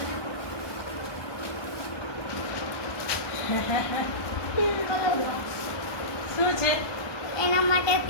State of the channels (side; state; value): right; late; 1.2 ms